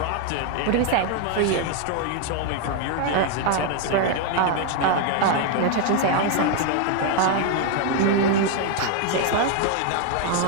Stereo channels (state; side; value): different; both; correlation 0.01